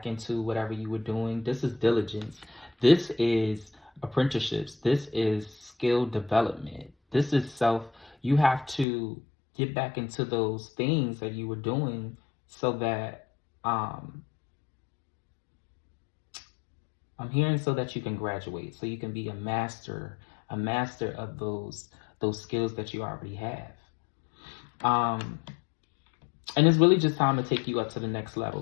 into whatever you were doing. This is diligence. This is apprenticeships. This is skill development. This is self. You have to get back into those things that you were doing so that, I'm hearing, so that you can graduate, so you can be a master of those skills that you already have. And it's really just time to take you up to the next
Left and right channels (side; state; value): right; drops out; at 8.8 s